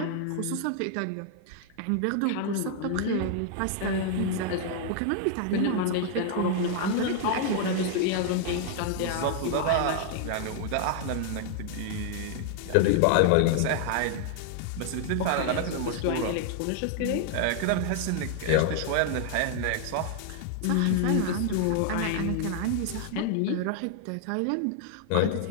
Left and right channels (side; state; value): both; different; correlation 0.00